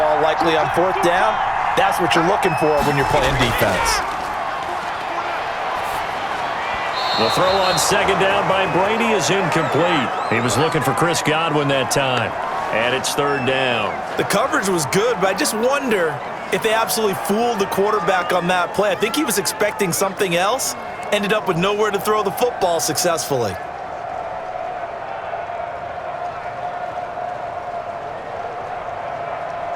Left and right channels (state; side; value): identical; both; correlation 1.00